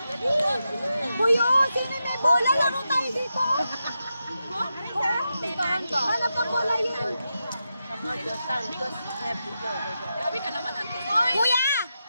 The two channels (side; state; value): both; inverted; correlation -0.88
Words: Buyo, sino may bola? Laro tayo dito. Hanap ang bola yun. Kuya,